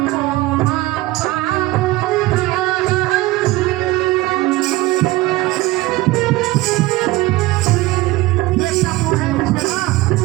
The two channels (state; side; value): quieter; left; 18.8 dB